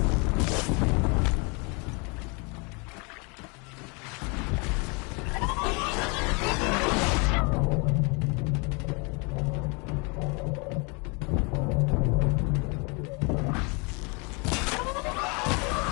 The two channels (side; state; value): right; quieter; 31.6 dB